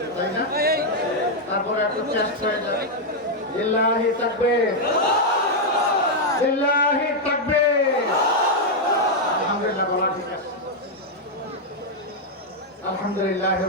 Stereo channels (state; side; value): normal; both; correlation -0.01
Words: তাই না? তারপরে একটু চেষ্টা হয়ে যাবে লিল্লাহি তাকবীর, লিল্লাহি তাকবীর। আলহামদুলিল্লাহ, বলা ঠিক আছে। আলহামদুলিল্লাহ